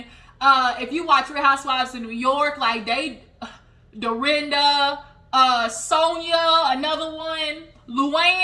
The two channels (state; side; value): identical; both; correlation 1.00